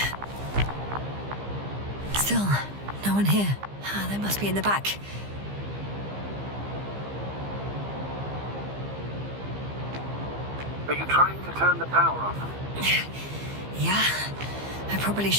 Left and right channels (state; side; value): late; left; 15 ms